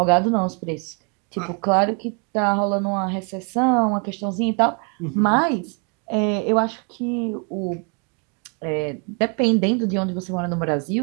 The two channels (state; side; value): quieter; left; 36.0 dB